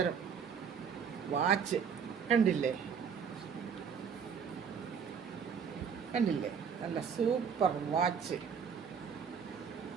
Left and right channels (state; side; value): quieter; left; 6.8 dB